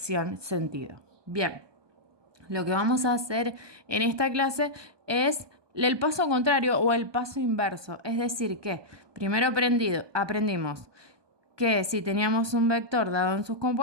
sentido. Bien, lo que vamos a hacer en esta clase es el paso contrario o el paso inverso. Es decir, que primero aprendimos que si teníamos un vector dado en sus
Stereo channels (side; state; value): left; late; 1.2 ms